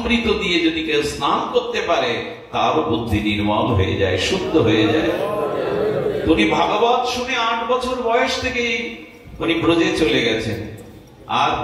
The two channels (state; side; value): identical; both; correlation 1.00